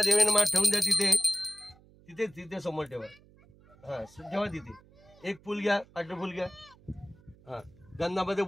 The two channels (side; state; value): right; noise; hum, 27 dB below the sound